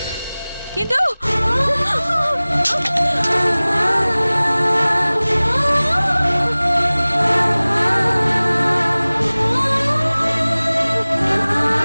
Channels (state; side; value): inverted; both; correlation -0.99